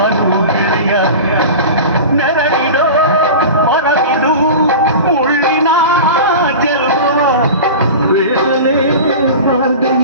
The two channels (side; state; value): both; inverted; correlation -0.32